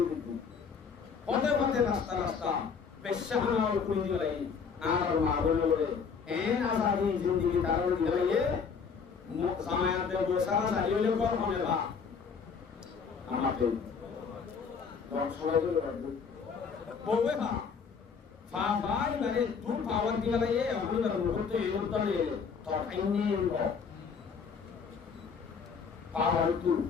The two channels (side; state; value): right; quieter; 5.9 dB